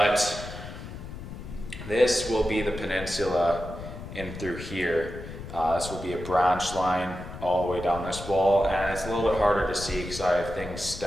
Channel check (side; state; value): left; noise; rumble, 11 dB below the sound